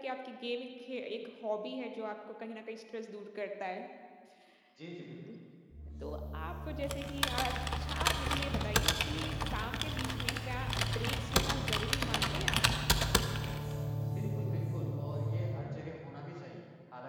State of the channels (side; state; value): both; identical; correlation 1.00